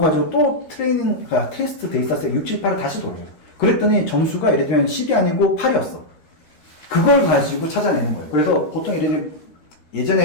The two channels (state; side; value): late; right; 13 ms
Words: 또 테스트 데이터셋 6, 7, 8을 다시 돌려요. 그랬더니 점수가 예를 들면 10이 아니고 8이었어. 그걸 가지고 찾아내는 거예요. 그래서 보통 예를 들면